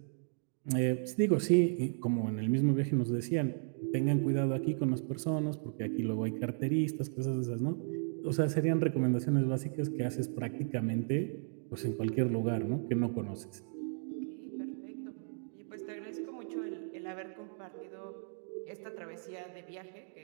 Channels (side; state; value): left; silent; digital silence